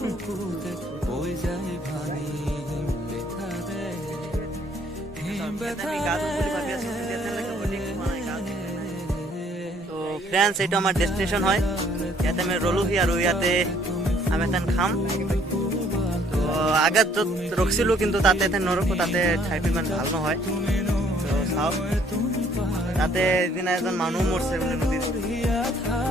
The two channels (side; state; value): both; normal; correlation 0.62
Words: তো ফ্ৰেণ্ডছ এইটো আমাৰ ডেষ্টিনেশ্যন হয় ইয়াতে আমি ৰলোহি আৰু ইয়াতে আমি এথেন খাম তো আগত য'ত ৰখিছিলোঁ কিন্তু তাতে এথেন নৰখোঁ তাতে ঠাইটো ইমান ভাল নহয় তো চাওক তাতে এদিনা এজন মানুহ মৰছে বোলে নদীত